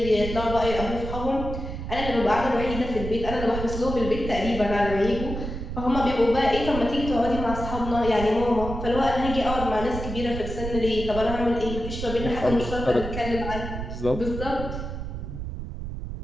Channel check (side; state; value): right; noise; rumble, 6 dB below the sound